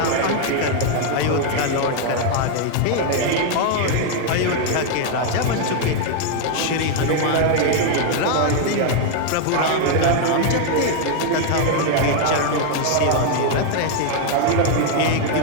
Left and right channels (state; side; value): different; both; correlation 0.00